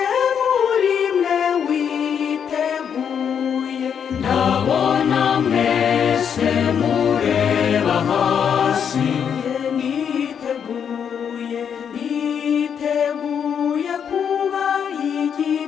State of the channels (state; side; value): quieter; right; 7.8 dB